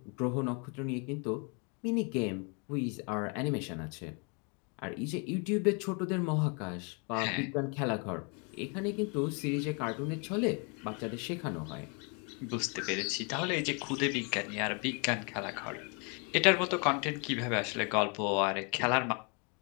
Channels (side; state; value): right; quieter; 35.0 dB